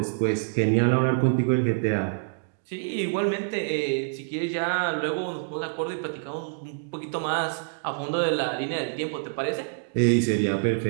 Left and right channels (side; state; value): left; silent; digital silence